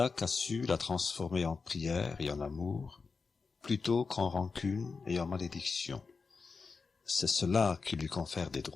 a su la transformer en prière et en amour, plutôt qu'en rancune et en malédiction. C'est cela qui lui confère des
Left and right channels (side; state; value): right; quieter; 4.8 dB